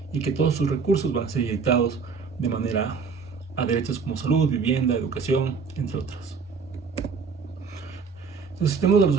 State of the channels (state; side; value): quieter; left; 5.3 dB